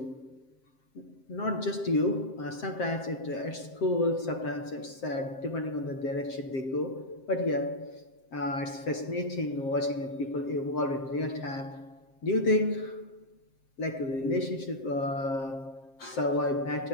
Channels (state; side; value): late; right; 7.6 ms